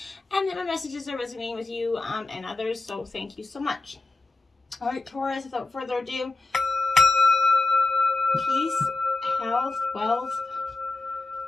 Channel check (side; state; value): right; quieter; 3.1 dB